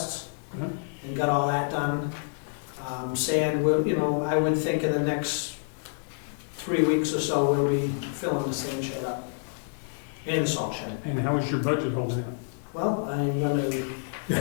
Uh-huh. and got all that done. Sand, I would think in the next 3 weeks or so, we'll be filling the sand shed up. And the salt shed. And how is your budget holding up? Well, I'm gonna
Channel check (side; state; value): right; silent; 59 dB below the other